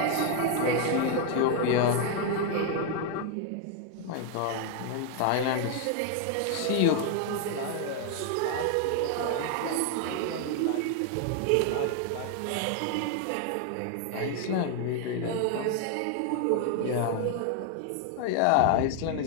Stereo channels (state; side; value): different; both; correlation 0.00